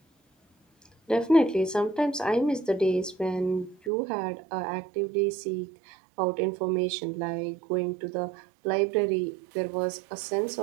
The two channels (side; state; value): left; drops out; at 3.9 s